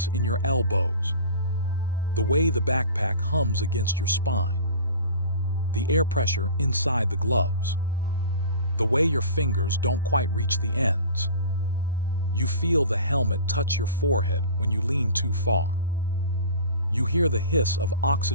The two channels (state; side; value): inverted; both; correlation -0.40